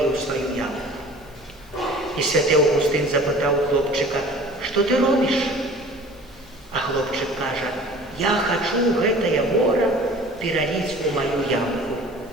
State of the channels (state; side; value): normal; both; correlation 0.45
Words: ў сваю ямку. І святы Аўгустын запытаў хлопчыка: «Што ты робіш?» А хлопчык кажа: «Я хачу гэтае мора пераліць у маю ямку».